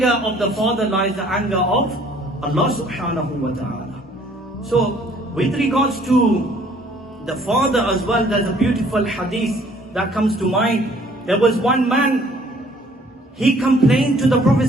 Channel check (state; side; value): normal; both; correlation 0.58